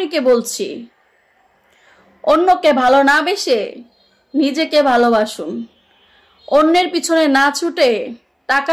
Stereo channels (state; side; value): identical; both; correlation 1.00